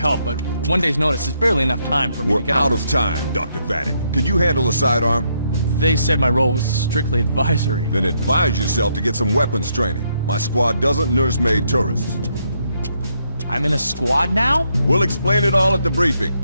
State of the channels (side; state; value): both; inverted; correlation -0.75